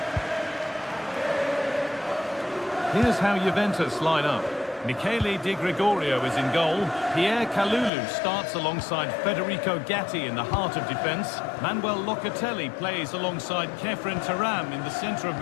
Here's how Juventus line up. Michele Di Gregorio is in goal. Pierre Kalulu starts alongside Federico Gatti in the heart of defence. Manuel Locatelli plays alongside Kefren Turam in the centre of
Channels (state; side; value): drops out; right; at 7.9 s